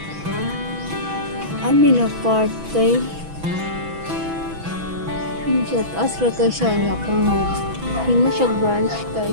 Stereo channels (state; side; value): late; left; 6.1 ms